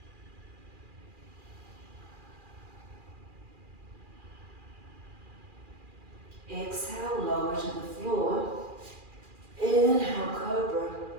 Exhale, lower to the floor. Inhale, cobra,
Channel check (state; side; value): late; left; 2.4 ms